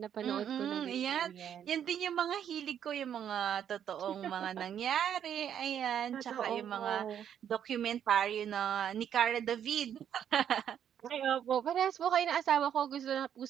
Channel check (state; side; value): quieter; left; 9.3 dB